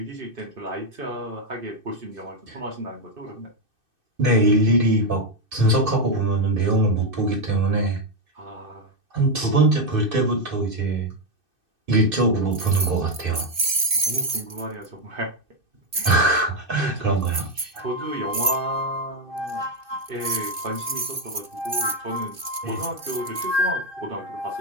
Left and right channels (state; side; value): late; left; 2.6 ms